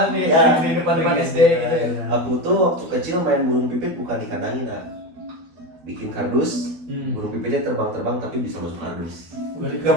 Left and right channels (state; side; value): late; left; 12 ms